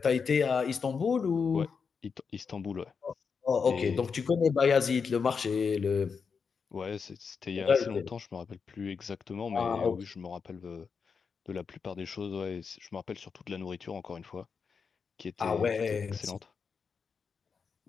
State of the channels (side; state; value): right; quieter; 5.7 dB